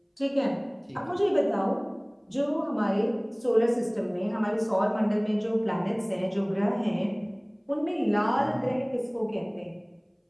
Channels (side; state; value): both; identical; correlation 1.00